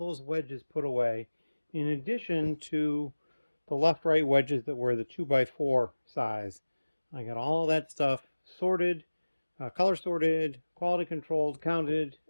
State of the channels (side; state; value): both; inverted; correlation -1.00